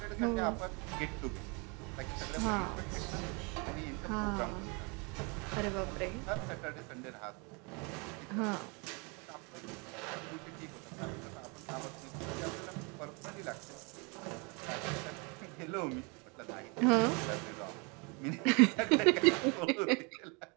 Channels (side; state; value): left; quieter; 31.7 dB